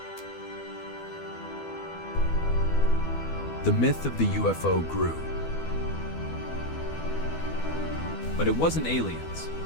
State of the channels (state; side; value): late; right; 12 ms